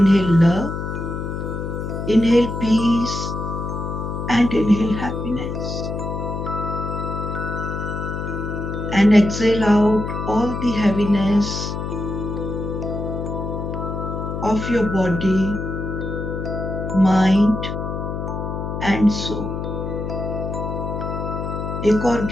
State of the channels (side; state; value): left; noise; hum, 4 dB below the sound